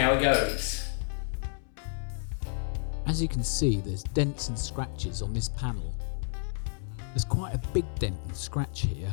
it goes. As you can see, there's dents and scratches on this panel. There's quite a big dent and scratch here.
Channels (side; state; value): right; silent; 57 dB below the other